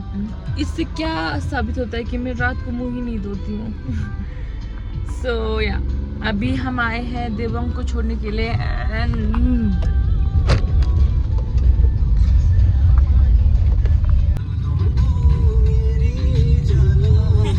इससे क्या साबित होता है कि मैं रात को मुंह ही नहीं धोती हूँ। So yeah, अभी हम आए हैं देवंग को छोड़ने के लिए and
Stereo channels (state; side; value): identical; both; correlation 1.00